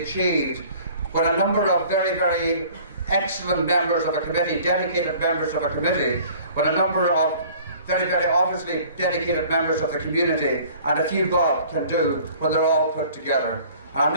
when a number of very, very excellent members of a committee, dedicated members of a committee, when a number of very, very obviously dedicated members of the community and a few bob can do when they're all put together. And I'm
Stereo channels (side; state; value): both; inverted; correlation -0.50